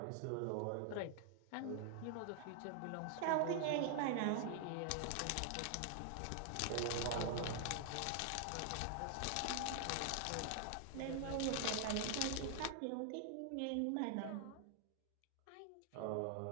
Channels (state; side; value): different; both; correlation 0.00